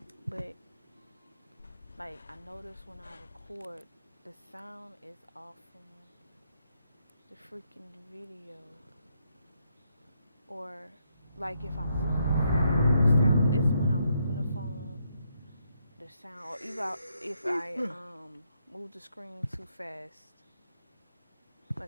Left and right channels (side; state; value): both; inverted; correlation -0.77